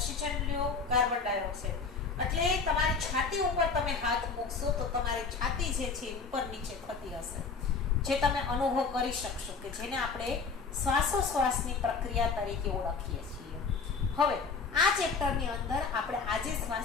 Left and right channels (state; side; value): quieter; right; 4.9 dB